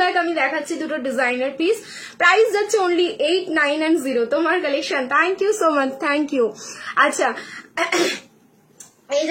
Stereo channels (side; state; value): both; identical; correlation 1.00